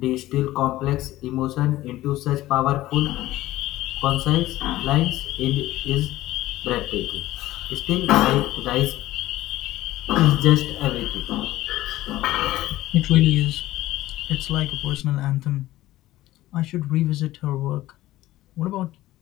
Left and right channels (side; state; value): right; quieter; 16.1 dB